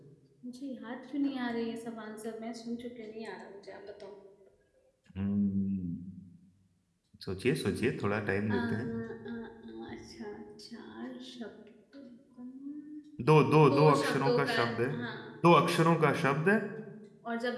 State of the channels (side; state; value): both; identical; correlation 1.00